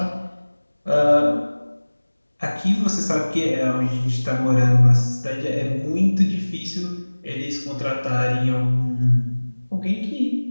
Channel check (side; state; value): both; inverted; correlation -1.00